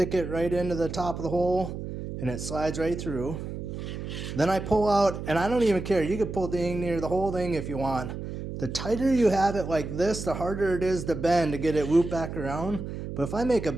it right into the top of the hole, and it slides right through. Then I pull out, and I don't even care, you can pull dang near the whole thing if you want. The tighter you have it like this, the harder it is to bend to get it looped back around. But if I make a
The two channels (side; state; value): right; noise; hum, 7 dB below the sound